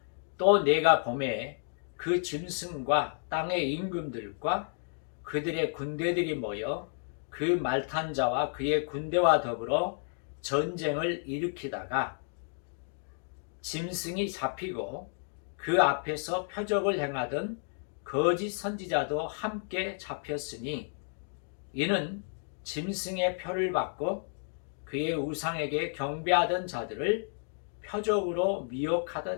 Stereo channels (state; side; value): silent; right; 57 dB below the other